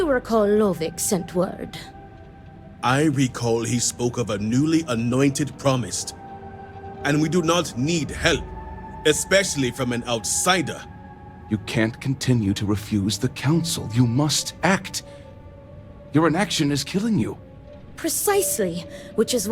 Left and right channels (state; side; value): identical; both; correlation 1.00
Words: recall Lovick sent word. I recall he spoke of a newly anointed promised. And we do not need help, especially from an outsider. You can't continue to refuse the council. You must act. Your inaction is killing you. Precisely, which is